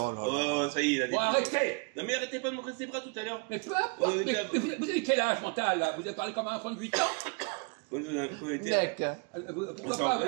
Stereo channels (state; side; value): quieter; left; 34.3 dB